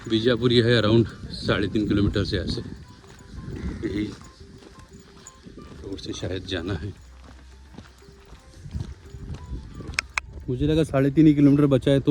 बीजापुरी है अराउंड 3.5 किलोमीटर से, यहाँ से यही रोड से शायद जाना है। मुझे लगा 3.5 किलोमीटर बचा है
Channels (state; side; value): identical; both; correlation 1.00